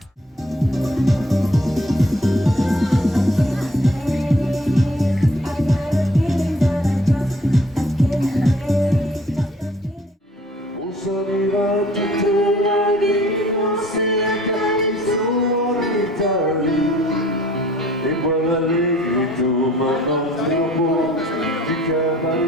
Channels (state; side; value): normal; both; correlation 0.56